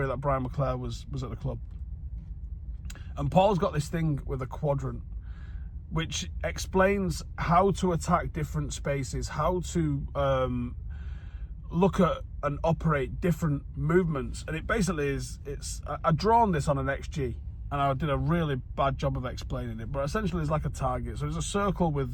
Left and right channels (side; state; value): both; identical; correlation 1.00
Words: that Brian McClare was at the club. And Paul's got this thing with a quadrant, which explains how to attack different spaces, how to look at and operate different movements. And it basically is, I've drawn this on an XG, and I did a really bad job of explaining it, but essentially it's like a target. So there's a circle